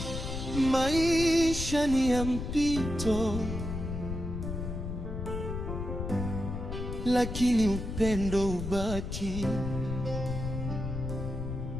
Maisha ni ya mpito, lakini upendo ubaki.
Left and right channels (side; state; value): left; noise; rumble, 5 dB below the sound